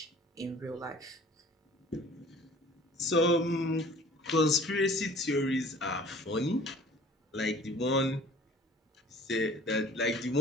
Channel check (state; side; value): normal; both; correlation 0.48